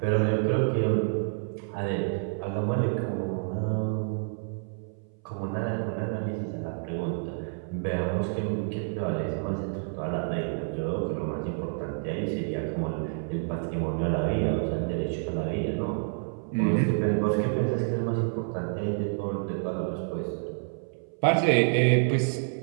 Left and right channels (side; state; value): left; silent; 59 dB below the other